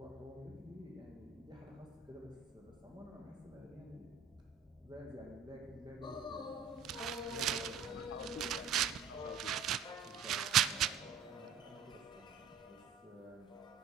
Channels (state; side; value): quieter; left; 6.5 dB